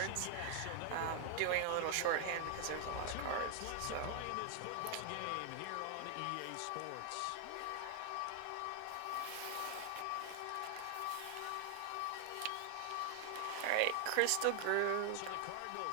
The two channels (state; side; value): different; both; correlation 0.00